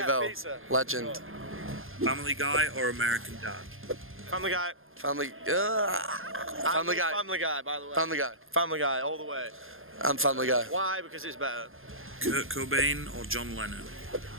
Evo. pizza. Legend. Family Guy or American Dad? Family Guy. Family. Family Guy. Family Guy, by the way. Family Guy. Family Guy, all the way. I'm Family Guy. Why? Because it's better. Kurt Cobain or John Lennon?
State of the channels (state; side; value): late; left; 0.60 ms